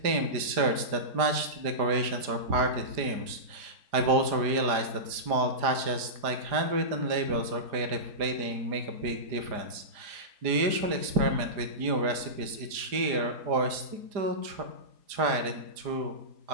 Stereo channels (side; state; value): left; late; 4.9 ms